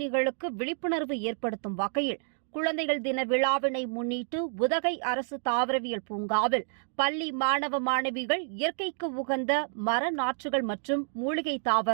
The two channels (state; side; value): silent; left; digital silence